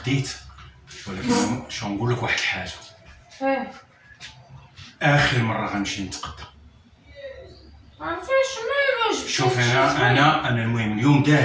ولكن شو نقول لك واحد الحاجه. اخر مره غنمشي نتقدى. عرفتيش مالو جبتي؟ شوف انا المهم اليوم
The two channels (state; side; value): identical; both; correlation 1.00